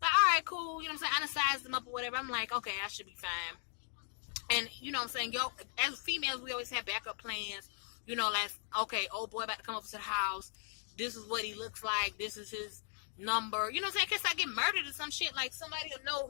like, all right, cool. You know what I'm saying? I done sized them up or whatever. I'm like, okay, I should be fine. And, you know what I'm saying? Yo, as females, we always have backup plans. You know, like, okay, old boy about to come up to the house. This is what he looks like. This is his number. You know what I'm saying? In case I get murdered or some shit, like, somebody will know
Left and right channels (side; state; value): right; silent; 53 dB below the other